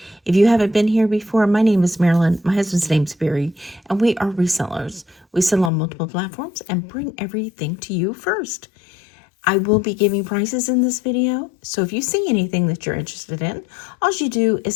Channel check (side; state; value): right; drops out; at 5.7 s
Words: If you haven't been here before, my name is Marilyn. My husband's name's Barry, and we are resellers. We sell on multiple platforms and bring everything to you first. I will be giving prices in this video, so if you see anything that you're interested in, all you do